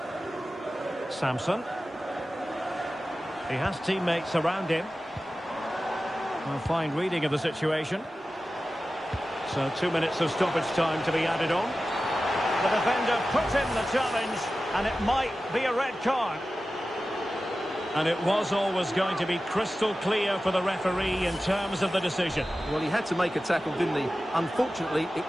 Samson. He has teammates around him. A fine reading of the situation. So 2 minutes of stoppage time to be added on. The defender puts in the challenge, and it might be a red card. And it was always going to be crystal clear for the referee in terms of the decision. Well, he had to make a tackle, didn't he? Unfortunately, it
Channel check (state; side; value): normal; both; correlation 0.94